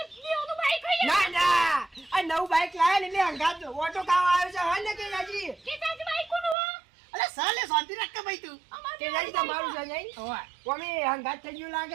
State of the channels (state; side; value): drops out; left; at 6.6 s